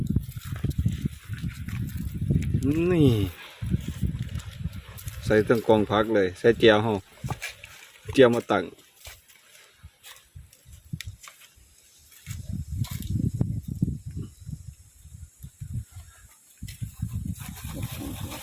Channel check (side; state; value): both; identical; correlation 1.00